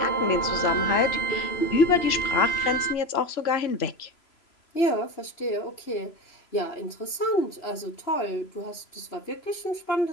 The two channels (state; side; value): late; right; 3.0 ms